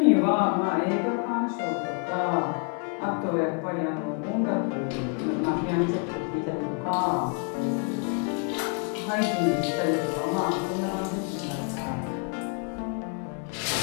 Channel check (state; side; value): quieter; right; 38.8 dB